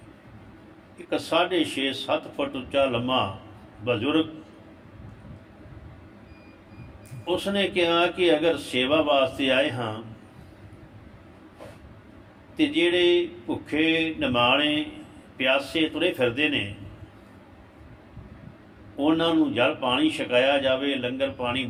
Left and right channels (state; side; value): identical; both; correlation 1.00